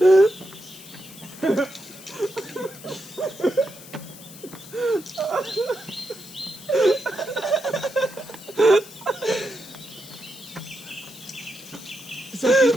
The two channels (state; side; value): noise; left; hiss, 17 dB below the sound